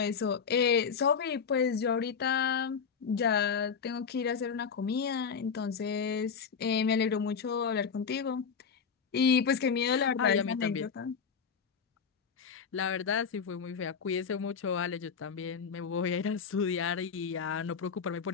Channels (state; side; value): quieter; right; 6.2 dB